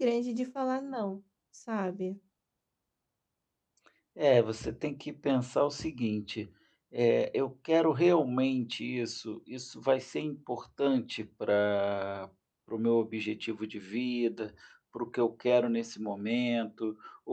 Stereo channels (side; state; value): both; identical; correlation 1.00